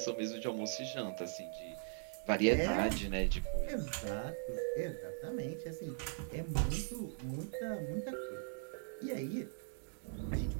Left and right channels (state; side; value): silent; left; digital silence